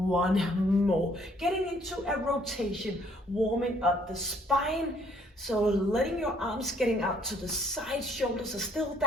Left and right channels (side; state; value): both; normal; correlation 0.65